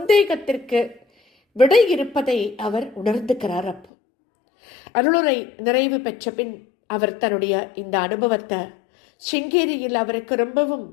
விடை இருப்பதை அவர் உணர்ந்துக்கிறார். அப்போ அருளுரை நிறைவு பெற்ற பின் அவர் தன்னுடைய இந்த அனுபவத்தை சிங்கேரியில் அவருக்கு ரொம்பவும்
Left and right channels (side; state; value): right; drops out; at 3.9 s